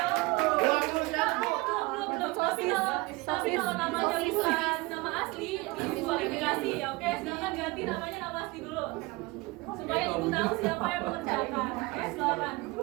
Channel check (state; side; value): quieter; left; 23.0 dB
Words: tapi kalau namanya bukan nama asli, diskualifikasi ya. Oke, silakan ganti namanya nama asli dulu. Supaya Ibu tahu siapa yang mengerjakan. Oke, silakan.